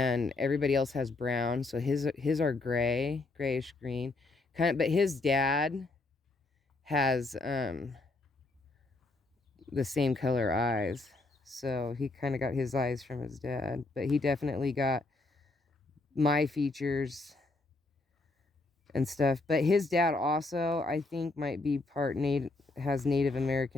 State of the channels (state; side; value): quieter; right; 3.2 dB